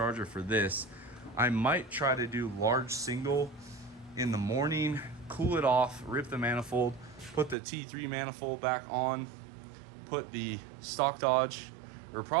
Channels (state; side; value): drops out; left; at 7.6 s